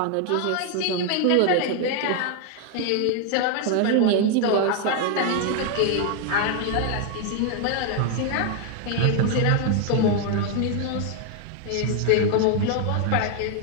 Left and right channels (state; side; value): different; both; correlation 0.00